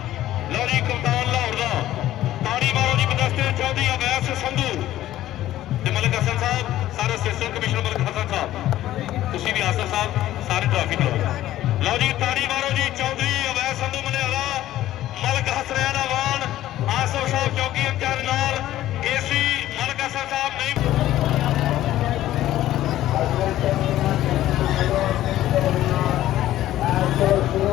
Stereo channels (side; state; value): right; quieter; 13.9 dB